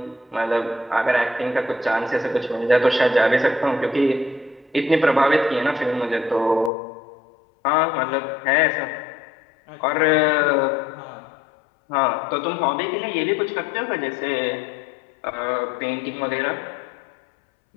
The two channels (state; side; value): drops out; right; at 6.7 s